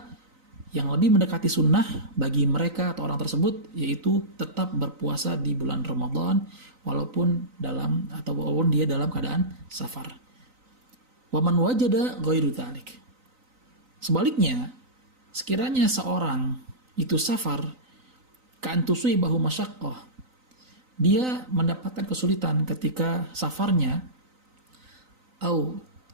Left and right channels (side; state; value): left; late; 3.9 ms